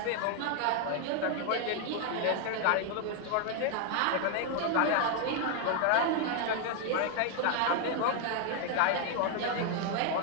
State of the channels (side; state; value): both; different; correlation 0.00